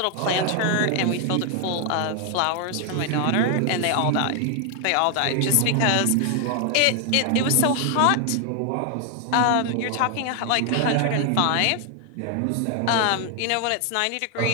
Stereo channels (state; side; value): different; both; correlation 0.00